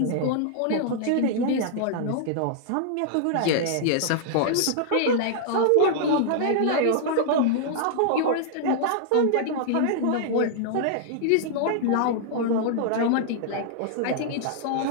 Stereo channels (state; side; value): different; both; correlation -0.01